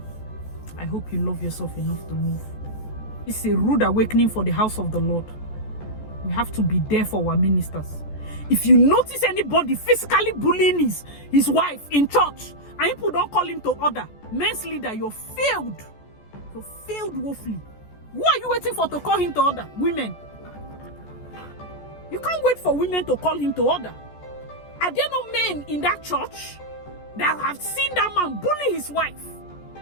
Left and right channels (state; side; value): late; right; 14 ms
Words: I hope you love yourself enough to move. It's a rude awakening for the house of the Lord. We have to be there for our ministers. If you notice anybody physically bullying his wife in church, and people don't call him to order, men's leader, you're failed. You're failed woefully. Who are you waiting for to call him to order? Women. You can't wait for women to call him to order. Are there no men in that church that have seen that man bully his wife?